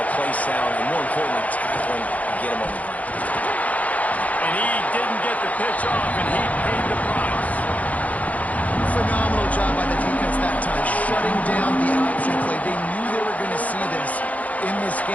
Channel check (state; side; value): late; right; 0.072 ms